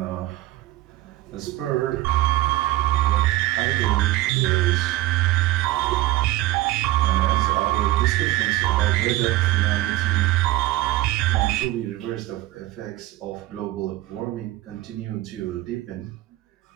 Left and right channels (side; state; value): left; quieter; 16.6 dB